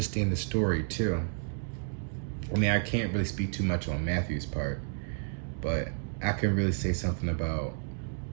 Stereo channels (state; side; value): silent; left; digital silence